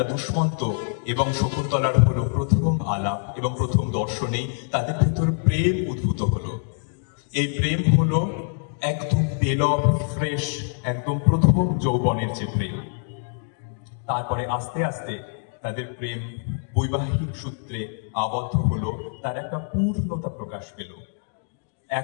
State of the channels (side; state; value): right; silent; digital silence